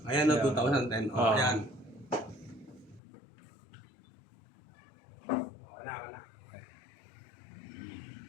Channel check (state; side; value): drops out; right; at 3.0 s